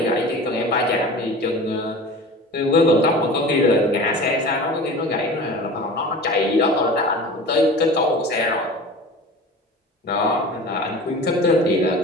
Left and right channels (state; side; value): normal; both; correlation 0.37